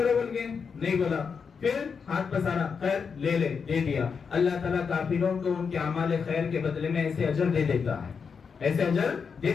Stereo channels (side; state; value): right; quieter; 5.9 dB